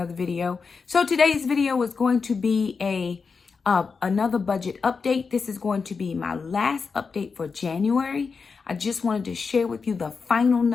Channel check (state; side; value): quieter; right; 5.1 dB